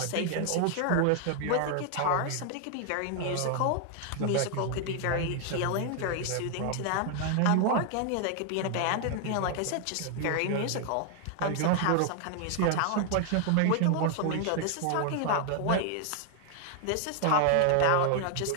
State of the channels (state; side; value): different; both; correlation 0.00